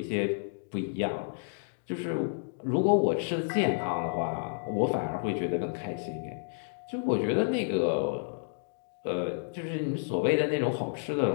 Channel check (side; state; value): right; silent; digital silence